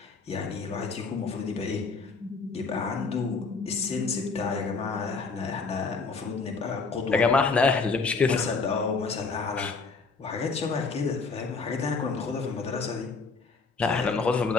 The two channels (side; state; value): right; quieter; 4.4 dB